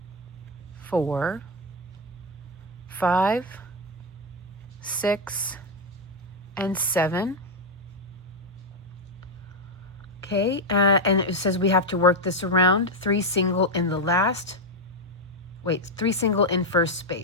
4, 5, 6, and 7. Okay, and it says we have to work this around. 3 single in the last. Wait, 3 single in first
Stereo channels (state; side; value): normal; both; correlation 0.04